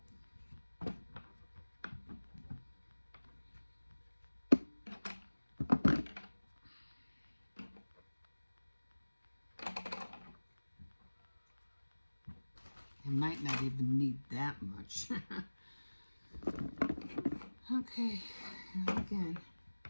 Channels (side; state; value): both; inverted; correlation -1.00